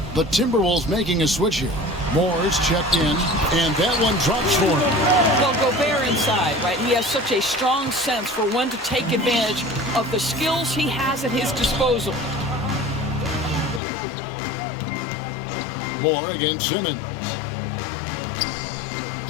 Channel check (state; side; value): drops out; right; at 13.8 s